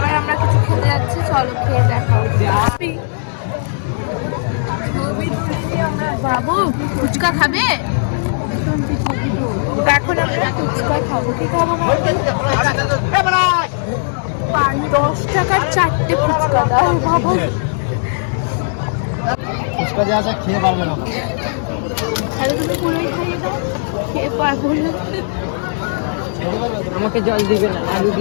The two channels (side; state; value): right; silent; digital silence